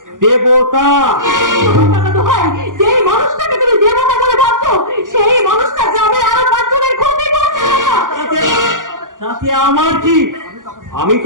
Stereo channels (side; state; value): left; late; 0.88 ms